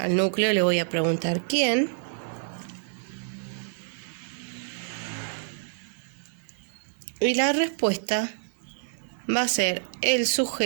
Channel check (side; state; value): left; silent; digital silence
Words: núcleo le voy a preguntar quién. Y la respuesta va a ser el